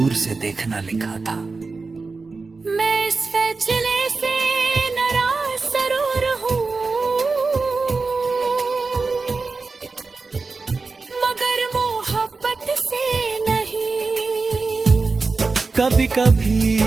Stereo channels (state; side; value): quieter; left; 4.1 dB